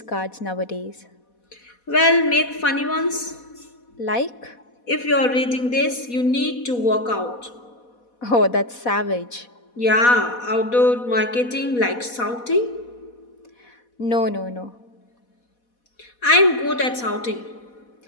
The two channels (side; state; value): right; late; 4.1 ms